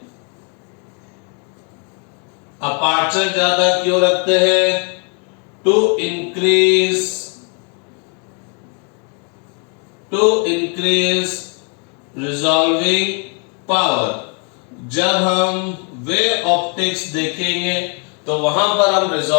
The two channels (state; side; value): quieter; right; 38.4 dB